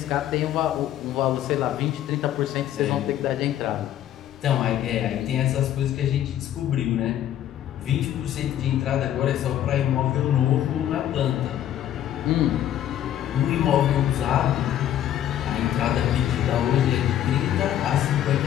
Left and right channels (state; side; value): quieter; right; 11.4 dB